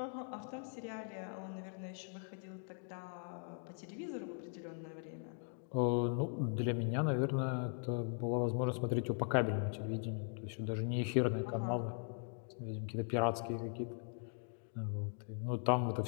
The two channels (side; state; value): right; silent; 51 dB below the other